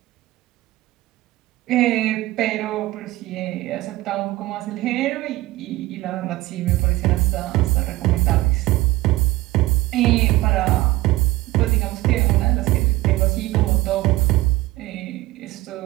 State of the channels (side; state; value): left; quieter; 17.9 dB